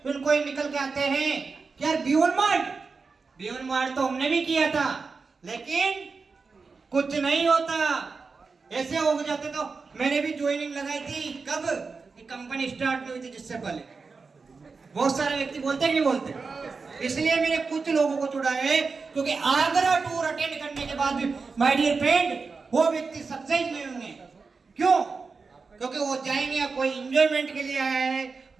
निकल के आते हैं कि यार बियॉन्ड मार्ट तो हमने भी किया था, लेकिन कुछ नहीं होता। ऐसे हो जाते तो मैंने भी ज्वाइनिंग लगाई थी। कब? कि कंपनी स्टार्ट नहीं हुई थी, जिससे पहले। बहुत सारे व्यक्ति बोलते हैं, नहीं बोलते? इसलिए मैंने कुछ लोगों को चुना है, क्योंकि आगरा टूर अटेंड करने के बाद भी माय डियर फ्रेंड वो व्यक्ति सक्सेस नहीं होंगे। क्यों? क्योंकि वो जाएंगे कोई एंजॉयमेंट के लिए आया है,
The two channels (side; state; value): left; quieter; 4.6 dB